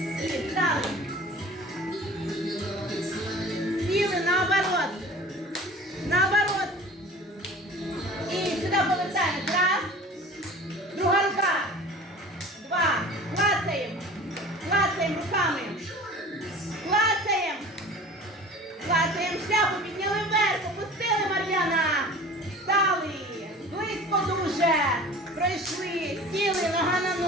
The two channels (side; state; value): both; normal; correlation 0.42